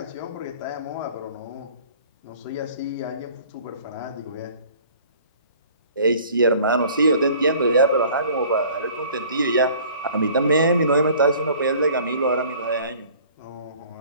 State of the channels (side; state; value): both; inverted; correlation -0.51